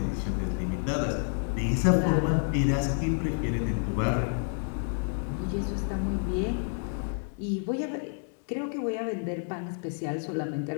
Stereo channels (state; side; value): silent; right; 58 dB below the other